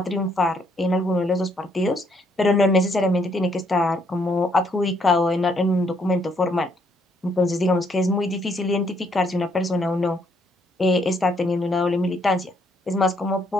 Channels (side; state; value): both; normal; correlation 0.70